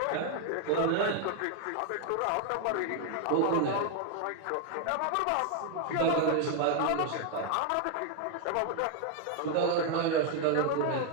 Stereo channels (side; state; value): both; different; correlation 0.00